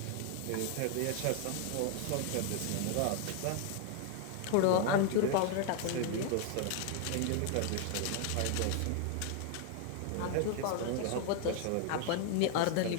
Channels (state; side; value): different; both; correlation 0.00